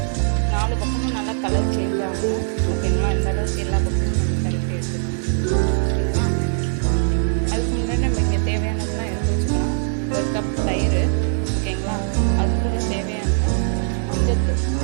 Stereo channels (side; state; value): left; silent; digital silence